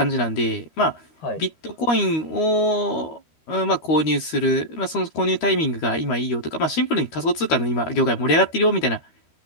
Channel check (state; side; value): late; right; 13 ms